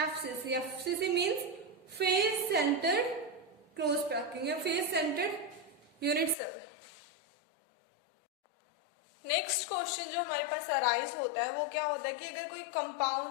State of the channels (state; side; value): drops out; right; at 6.4 s